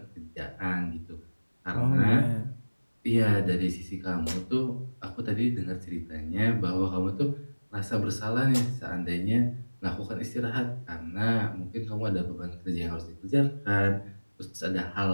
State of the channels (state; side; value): inverted; both; correlation -1.00